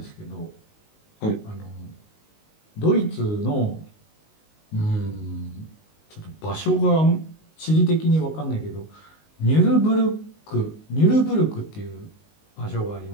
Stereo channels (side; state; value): right; late; 19 ms